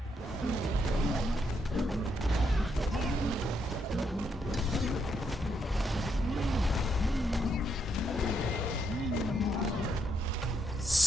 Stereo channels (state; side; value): normal; both; correlation 0.77